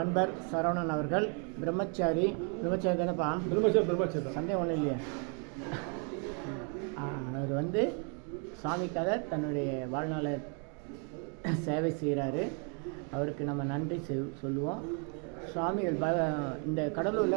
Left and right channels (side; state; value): left; quieter; 38.9 dB